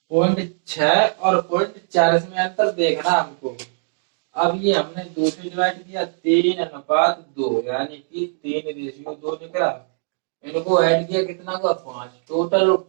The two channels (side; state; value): left; silent; digital silence